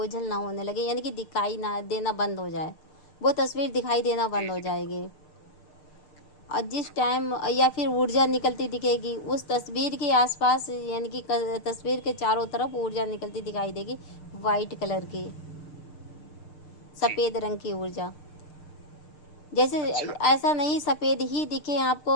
ना होने लगे, यानी कि दिखाई ना देना बंद हो जाए, वो तस्वीर दिखाई देना जी बंद हो जी। जाएगी। और जिस टाइम या फिर ऊर्जा निकलती दिखेगी उस तस्वीर के आसपास, यानी कि तस्वीर के चारों तरफ ऊर्जा निकलती दिखाई देगी, वाइट कलर की, जी। सफ़ेद रंग की ऊर्जा। जैसे अच्छा। ऐसा नहीं सफ़ेद ही दिखे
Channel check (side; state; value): right; late; 6.6 ms